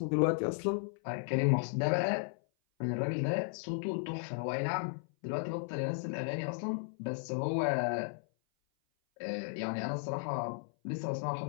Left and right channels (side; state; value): right; silent; 55 dB below the other